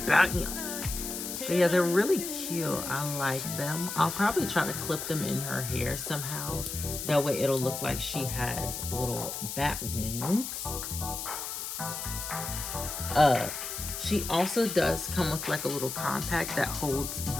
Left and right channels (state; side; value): noise; left; hiss, 6 dB below the sound